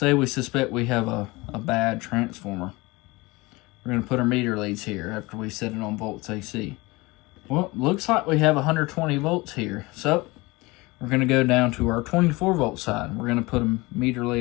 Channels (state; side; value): quieter; right; 23.1 dB